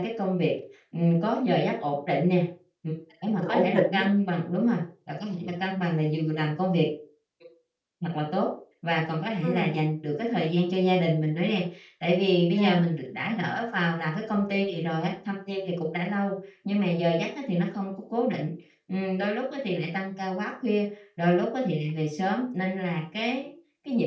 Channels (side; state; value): both; identical; correlation 1.00